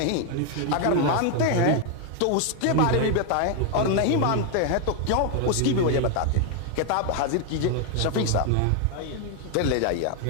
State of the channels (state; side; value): different; both; correlation 0.01